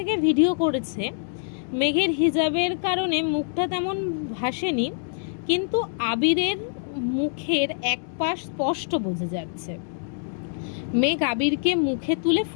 ভিডিও করেছে। মেঘের হিজাবের কারণে মুখটা তেমন ভাসেনি, কিন্তু আবিরের মুখের এক পাশ স্পষ্ট বোঝা যাচ্ছে। মেঘ আবিরকে মুখে তুলে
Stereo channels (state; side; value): silent; right; digital silence